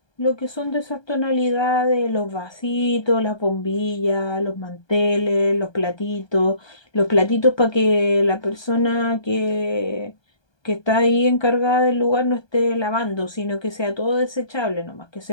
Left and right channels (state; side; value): late; right; 1.2 ms